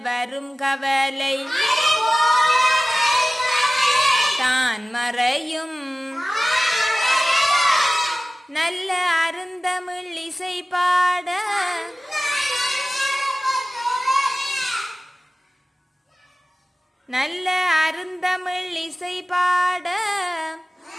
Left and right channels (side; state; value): both; normal; correlation 0.96